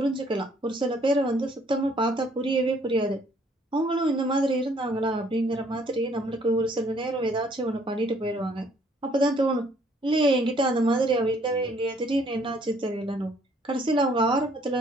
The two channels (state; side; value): normal; both; correlation 0.63